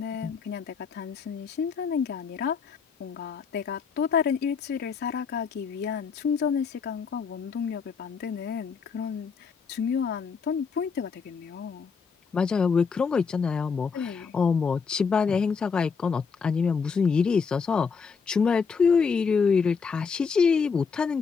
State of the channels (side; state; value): right; quieter; 5.6 dB